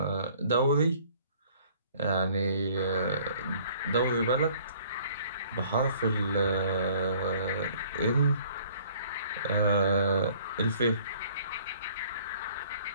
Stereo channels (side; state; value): both; inverted; correlation -0.56